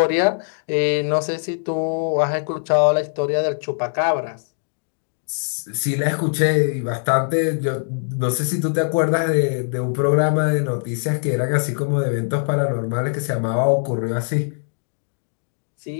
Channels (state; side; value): silent; right; digital silence